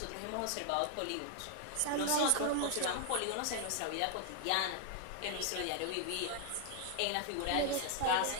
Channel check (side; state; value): both; different; correlation 0.00